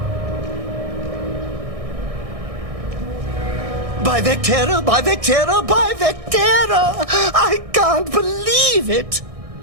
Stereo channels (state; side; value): late; left; 1.6 ms